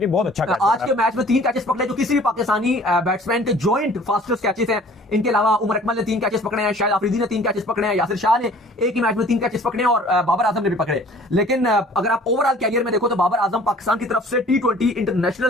में बहुत अच्छा कैच आज के मैच में 3 कैचेस पकड़े जो किसी भी पाकिस्तानी बैट्समैन के जॉइंट फास्टेस्ट कैचेस हैं। इनके अलावा उमर अकमल ने 3 कैचेस पकड़े हैं, शाहिद आफरीदी ने 3 कैचेस पकड़े हैं, यासिर शाह ने एक ही मैच में 3 कैचेस पकड़े हैं और बाबर आजम ने भी पकड़े। लेकिन अगर आप ओवरऑल कैरियर में देखो तो बाबर आजम पाकिस्तान की तरफ से T20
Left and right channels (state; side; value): normal; both; correlation 0.51